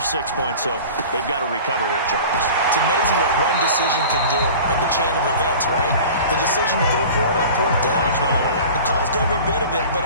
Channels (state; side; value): inverted; both; correlation -0.39